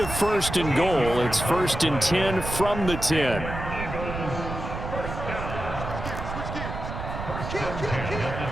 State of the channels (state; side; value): noise; right; rumble, 6 dB below the sound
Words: 1st and goal. It's 1st and 10 from the 10.